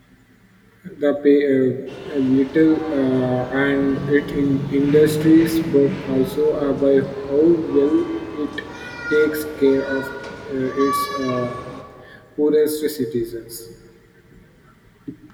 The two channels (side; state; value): both; identical; correlation 1.00